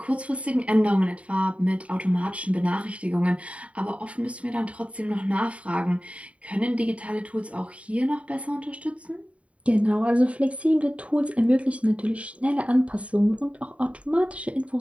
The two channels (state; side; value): late; left; 0.065 ms